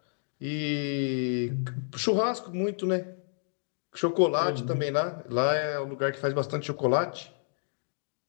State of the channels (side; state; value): right; silent; digital silence